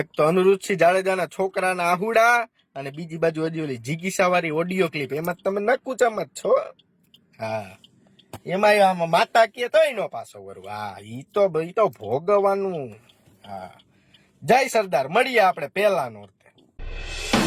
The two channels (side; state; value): both; identical; correlation 1.00